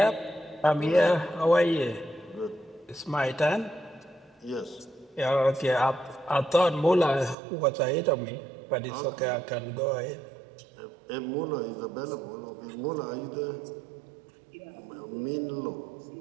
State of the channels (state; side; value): drops out; left; at 7.4 s